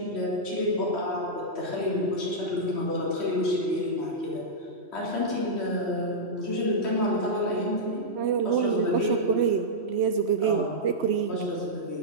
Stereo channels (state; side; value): late; left; 3.1 ms